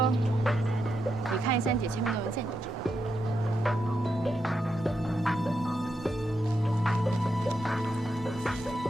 你看一下你姐签名的文件，你就知道。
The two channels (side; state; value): both; normal; correlation 0.84